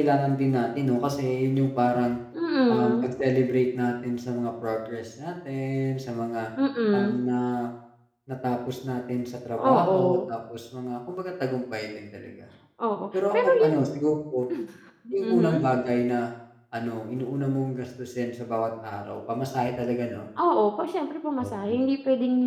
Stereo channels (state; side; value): identical; both; correlation 1.00